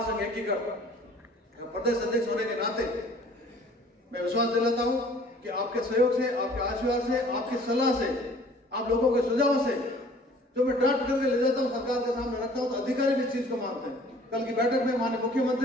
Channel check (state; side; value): normal; both; correlation 0.52